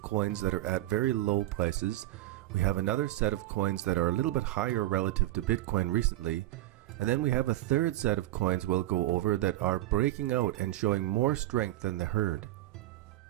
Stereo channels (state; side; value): quieter; left; 15.8 dB